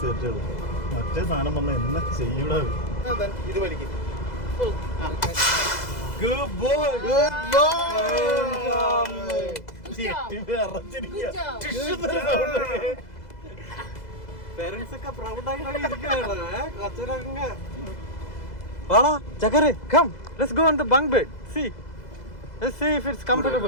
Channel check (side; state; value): right; late; 2.0 ms